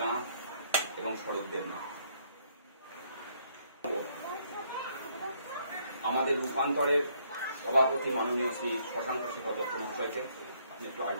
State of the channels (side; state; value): both; inverted; correlation -0.68